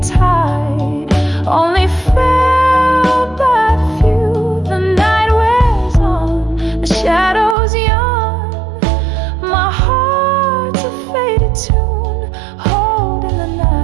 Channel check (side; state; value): left; drops out; at 7.6 s